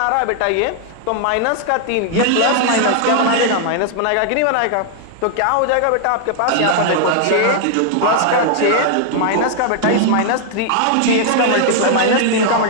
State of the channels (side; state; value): both; different; correlation 0.00